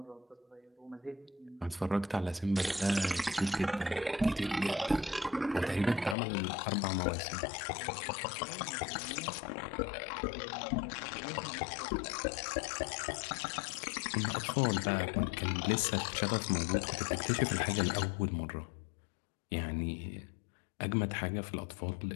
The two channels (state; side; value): drops out; right; at 6.2 s